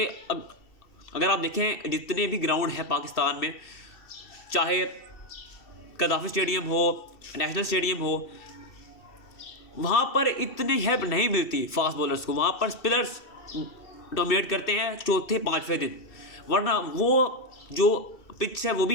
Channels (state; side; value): late; right; 2.7 ms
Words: अगर आप देखें जितने भी ग्राउंड हैं पाकिस्तान में, चाहे कदाफी स्टेडियम हो, नेशनल स्टेडियम हो, वहाँ पर इतनी हेल्प नहीं मिलती फास्ट बॉलर्स को। वहाँ पर स्पिनर्स डोमिनेट करते हैं चौथे पाँचवें दिन, वरना वो जो पिच है वो